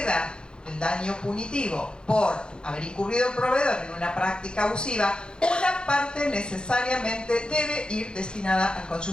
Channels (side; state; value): right; late; 0.049 ms